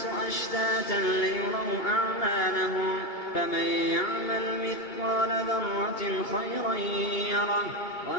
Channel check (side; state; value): right; late; 2.3 ms